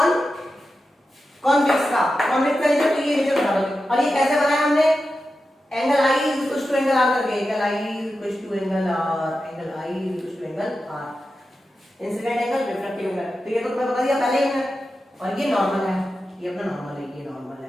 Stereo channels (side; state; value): both; normal; correlation 0.91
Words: कॉन्वेक्स का नेचर, तो ये नेचर बता दो। और ये कैसे बनाया हमने? Angle I is equal to angle r करके, angle I is equal to angle r, angle I is equal to angle r, incident angle, refractive angle. तो ये तो तुम्हें बता दिया पहले ही है। और ये नॉर्मल है, ये अपना नॉर्मल है, ये नॉर्मल है,